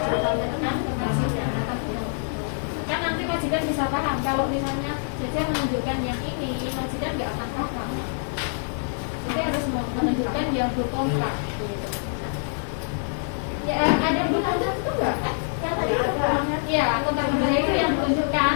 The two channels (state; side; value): silent; right; digital silence